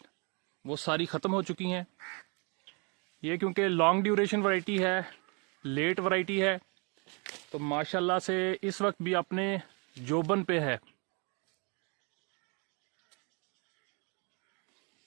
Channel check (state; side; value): quieter; left; 32.6 dB